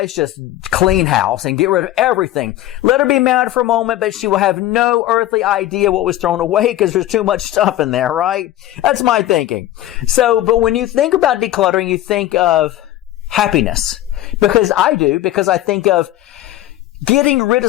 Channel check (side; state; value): right; quieter; 14.2 dB